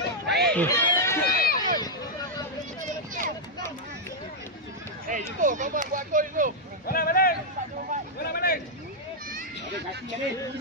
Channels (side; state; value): both; normal; correlation -0.04